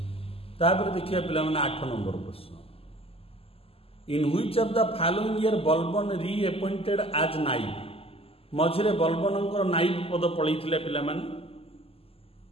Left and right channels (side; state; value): right; late; 0.28 ms